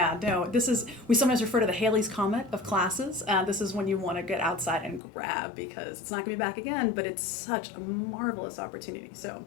No, we sometimes refer to the Halley's Comet of classes. This is when you want to get outside and grab because it's not going to be back again, but it's such a marvelous opportunity. So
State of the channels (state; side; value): drops out; right; at 5.0 s